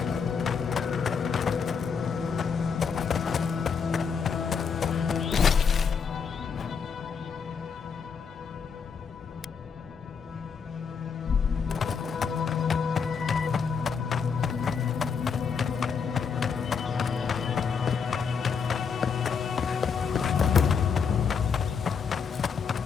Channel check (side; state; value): right; quieter; 6.1 dB